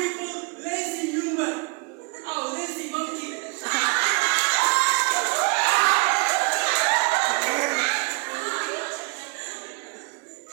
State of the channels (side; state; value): left; quieter; 31.5 dB